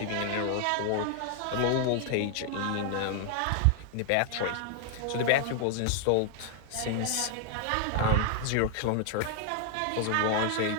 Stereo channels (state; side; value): different; both; correlation 0.00